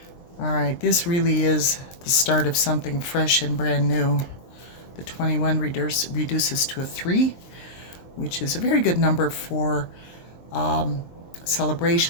All right, this really is the start of something fresh and brand new. The 21 reduces to a 3, which is a very good number for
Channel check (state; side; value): late; right; 23 ms